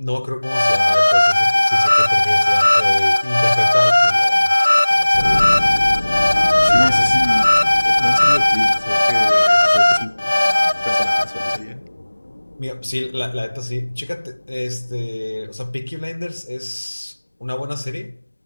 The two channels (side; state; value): both; inverted; correlation -1.00